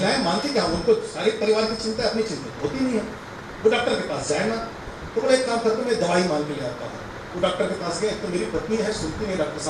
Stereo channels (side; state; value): both; identical; correlation 1.00